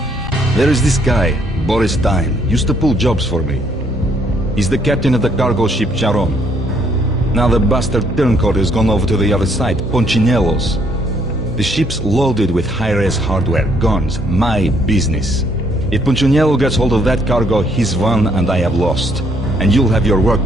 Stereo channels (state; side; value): normal; both; correlation 0.68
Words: There is this guy, Boris Dime, used to pull jobs for me. He's the captain of the cargo ship Charon. Now the bastard turncoat has gone over to the other side, Punchinello's. The ship's loaded with high-res hardware, guns, my business. If Punchinello gets hold of that cargo, he's won and I have lost. And you'll have your work